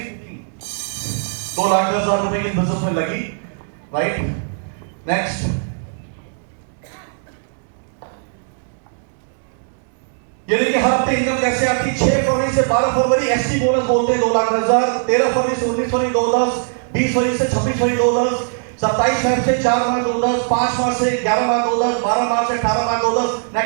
2,10,000 रुपए की बिजनेस में लगी। राइट। नेक्स्ट, ये देखिए हर हफ्ते इनकम कैसे आती। 6 फरवरी से 12 फरवरी एसटी बोनस बोलते हैं 2,10,000, 13 फरवरी से 19 फरवरी 2,10,000, 20 फरवरी से 26 फरवरी 2,10,000, 27 फरवरी से 4 मार्च 2,10,000, 5 मार्च से 11 मार्च 2,10,000, 12 मार्च से 18 मार्च 2,10,000।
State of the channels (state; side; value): silent; left; digital silence